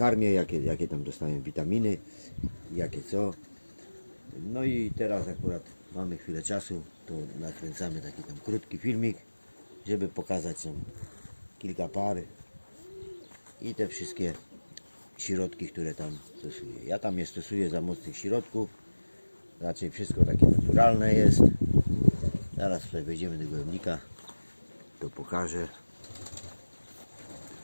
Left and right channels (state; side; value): inverted; both; correlation -1.00